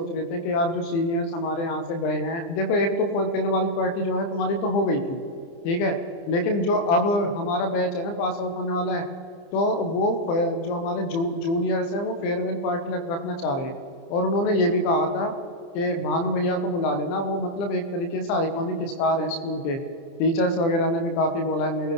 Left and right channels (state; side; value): late; right; 30 ms